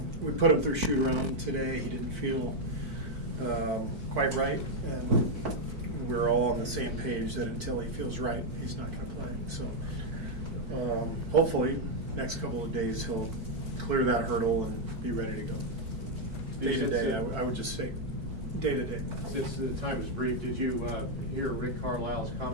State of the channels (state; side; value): late; left; 4.5 ms